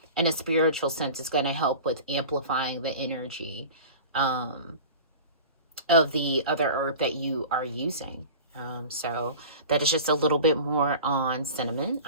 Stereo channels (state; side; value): inverted; both; correlation -0.36